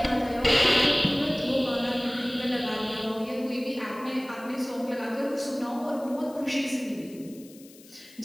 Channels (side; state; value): left; noise; hiss, 23 dB below the sound